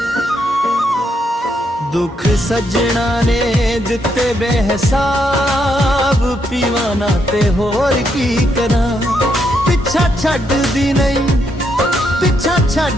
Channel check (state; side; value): normal; both; correlation 0.77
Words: दुख सजना ने दिते बेहिसाब, पीवाना ते होर की करां। पिछा छड्डदी नहीं, पिछा